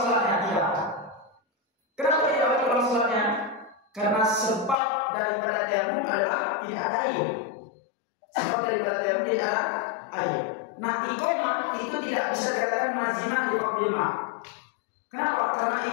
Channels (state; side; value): drops out; right; at 4.8 s